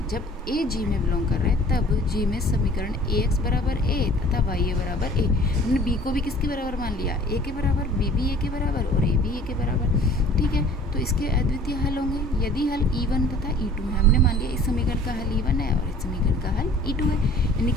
जब ए जी में बिलोंग कर रहा है तब जी में समीकरण ए एक्स बराबर ए तथा वाई ए बराबर ए। हमने बी को भी किसके बराबर मान लिया, ए के बराबर, बी भी ए के बराबर और ए भी ए के बराबर। ठीक है, तो इसके अद्वितीय हल होंगे यदि हल E1 तथा E2 है। हमने मान लिया इस समीकरण का हल E1 है और इस समीकरण का हल E2 है, यानी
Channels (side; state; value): both; normal; correlation 0.50